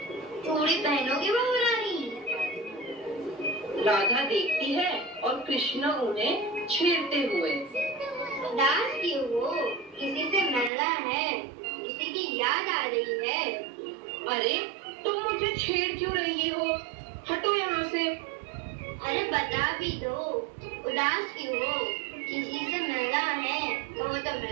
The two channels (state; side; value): drops out; left; at 10.7 s